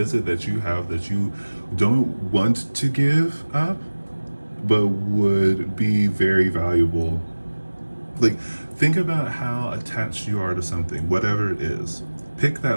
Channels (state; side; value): inverted; both; correlation -1.00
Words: that you have that you don't want to give up, but would be very valuable? Like, think about how attached you are to something, whatever it is. Pick